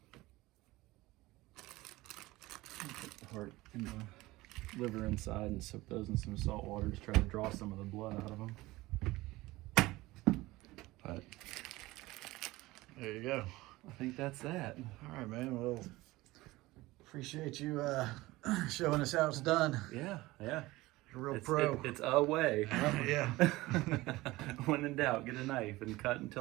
Put the heart and the liver inside and soak those in some salt water to try to draw some of the blood out of them. But There you go. I think that's that. All right, man. Well, appreciate you showing us how it's done. Yeah, yeah. You're a real pro. It's a way. Yeah. When in doubt, get a knife and cut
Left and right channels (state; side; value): quieter; left; 19.4 dB